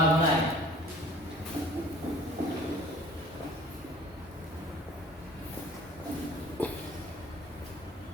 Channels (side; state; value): both; normal; correlation 0.49